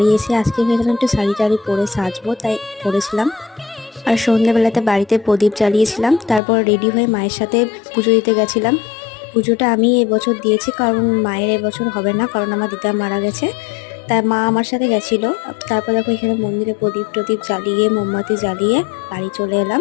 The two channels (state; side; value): drops out; right; at 6.4 s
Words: এসে আজকে ভেবেছিলাম একটু শাড়ি টাড়ি পরে সাজবো, তাই পরেছিলাম। আর সন্ধ্যাবেলাতে বাড়িতে প্রদীপ জ্বালিয়েছিলাম। তারপর রেডি হয়ে মায়ের সাথে পুজো দিতে গেছিলাম। পুজোটা আমি এবছর দিয়েছি, কারণ মায়ের এবছর হবে না, কারণ আমার দিদা মারা গেছে। তাই মা আমার সাথে গেছিলো। তারপর দেখো এখানে মন্দিরে প্রদীপ টদীপ জ্বালিয়ে মোমবাতি জ্বালিয়ে বাড়ি চলে এলাম।